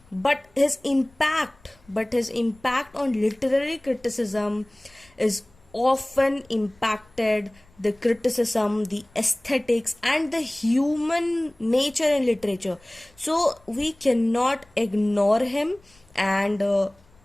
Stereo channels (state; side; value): noise; left; rumble, 30 dB below the sound